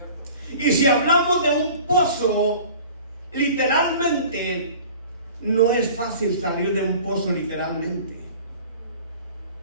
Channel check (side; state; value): both; inverted; correlation -0.44